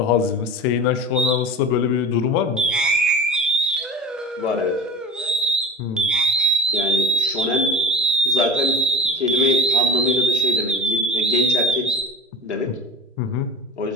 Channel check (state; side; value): normal; both; correlation 0.32